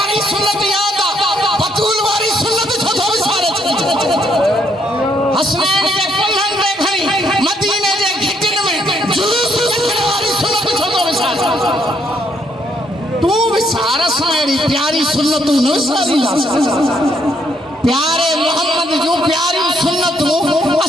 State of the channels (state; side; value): normal; both; correlation 0.72